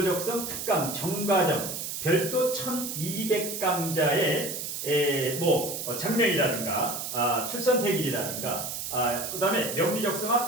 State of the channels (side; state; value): right; noise; hiss, 5 dB below the sound